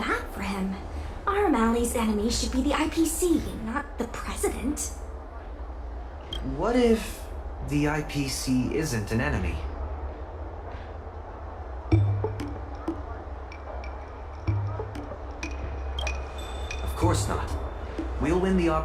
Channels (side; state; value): both; identical; correlation 1.00